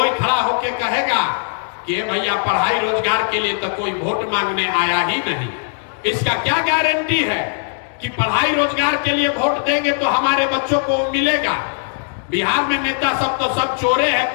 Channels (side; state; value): right; silent; digital silence